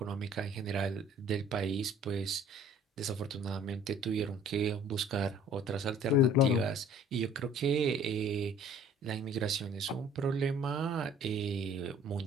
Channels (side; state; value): both; normal; correlation 0.52